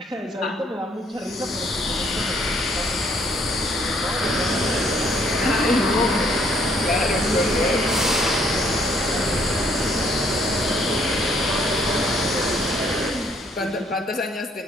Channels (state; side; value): normal; both; correlation 0.66